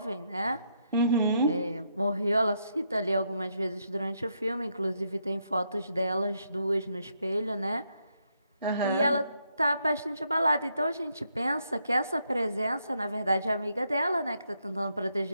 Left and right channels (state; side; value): inverted; both; correlation -0.77